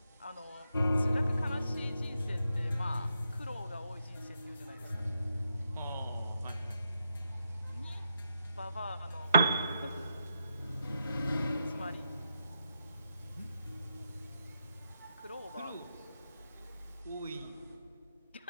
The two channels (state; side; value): inverted; both; correlation -0.83